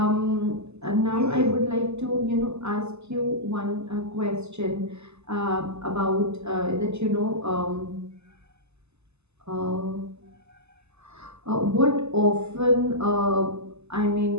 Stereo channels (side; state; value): left; late; 0.80 ms